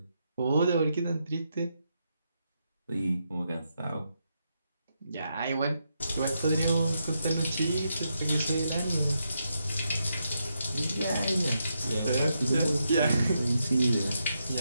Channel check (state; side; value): inverted; both; correlation -0.82